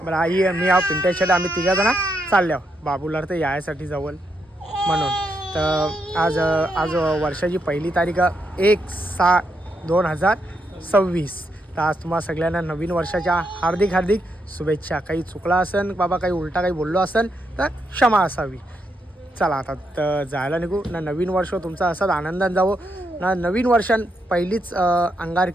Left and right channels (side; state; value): both; normal; correlation 0.80